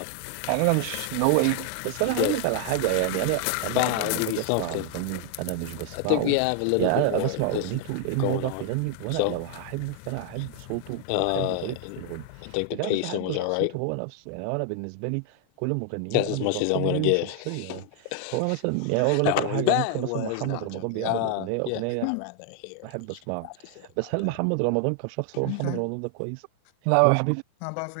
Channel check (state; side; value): different; both; correlation 0.00